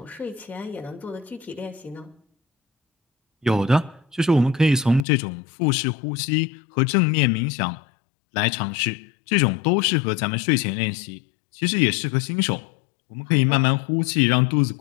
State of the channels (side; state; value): right; drops out; at 5.1 s